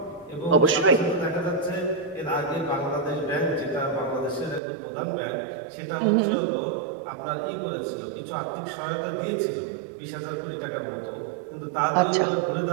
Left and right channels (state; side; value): drops out; left; at 4.6 s